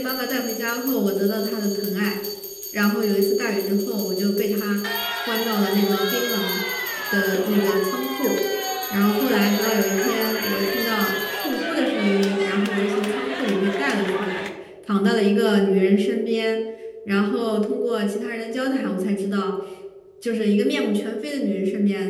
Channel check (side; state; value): both; identical; correlation 1.00